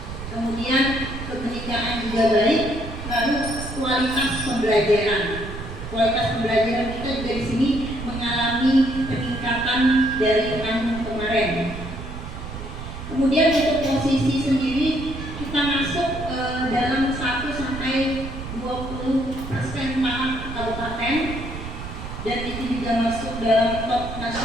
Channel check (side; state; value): right; noise; rumble, 9 dB below the sound